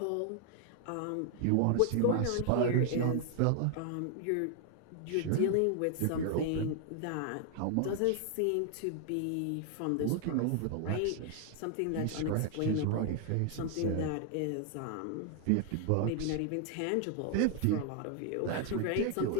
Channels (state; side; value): different; both; correlation 0.00